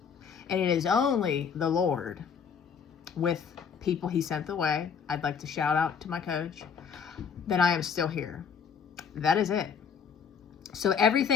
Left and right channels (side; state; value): right; quieter; 6.7 dB